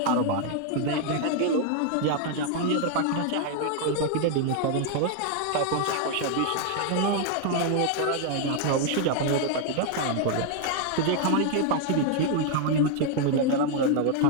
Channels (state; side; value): different; both; correlation 0.00